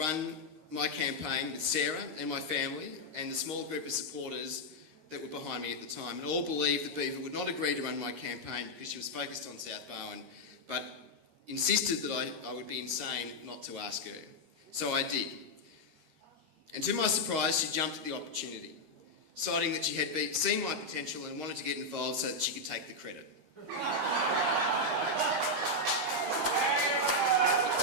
my campaign with Sarah and my family and the small group of supporters that were behind me at the time, and all believed that Beaver would not agree to run my campaign because she was focused on South Barwon, but insisted that I would be insane not to ask her. So I did. And to my surprise, she jumped at the opportunity, citing that she had seen my potential and wanted to get involved so that she could take the credit.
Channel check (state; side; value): late; left; 13 ms